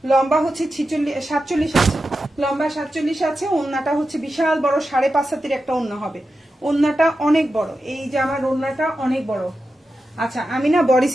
লম্বা হচ্ছে 47 আছে, লম্বা 47 আছে। ওন্নাটা হচ্ছে বিশাল বড়, 5.5 হাতের একটা ওন্না হবে। ওন্নাটা অনেক বড়, এই যে আমার ওন্নাটা অনেক বড়। আচ্ছা, আমি না বডি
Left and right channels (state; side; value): normal; both; correlation 0.91